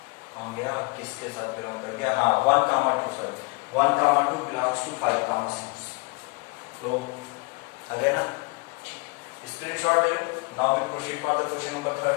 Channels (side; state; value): right; quieter; 29.5 dB